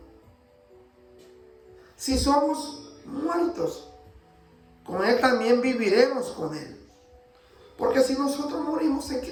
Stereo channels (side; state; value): both; identical; correlation 1.00